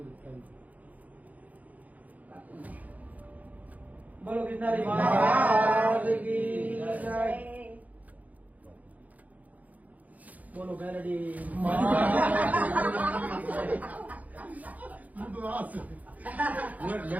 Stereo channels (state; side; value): late; left; 0.076 ms